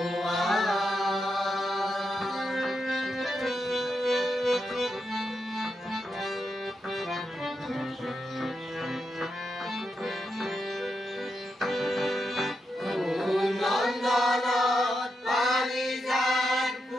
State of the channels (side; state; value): both; normal; correlation 0.85